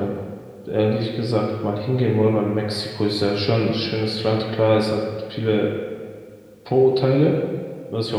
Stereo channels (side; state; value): both; identical; correlation 1.00